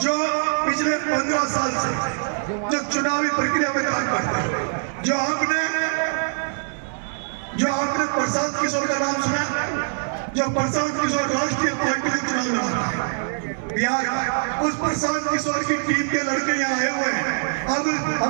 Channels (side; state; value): left; silent; 63 dB below the other